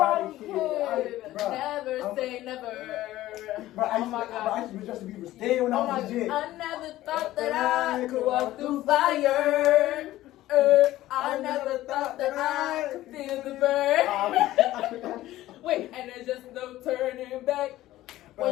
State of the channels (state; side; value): quieter; right; 15.4 dB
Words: Kid. Never say never. Bro, oh my God. I used to be Justin Bieber staying when I was legit. I never thought that I could walk through fire. I never thought that I could feel the burn. Wait, and there's just no turning back. When